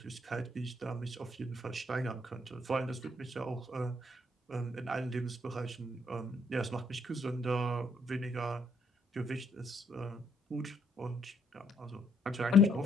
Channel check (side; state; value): both; normal; correlation 0.70